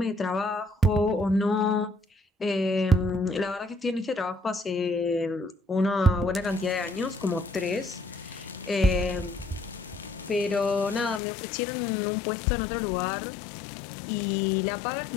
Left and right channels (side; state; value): right; drops out; at 11.2 s